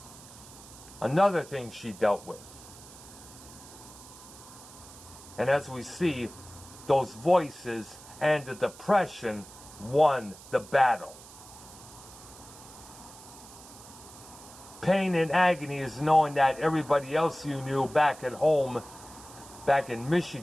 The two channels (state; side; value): noise; right; hiss, 18 dB below the sound